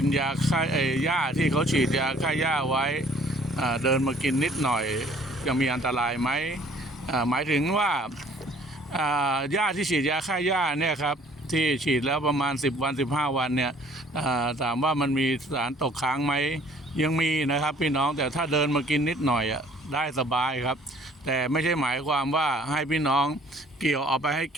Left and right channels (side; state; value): both; normal; correlation 0.56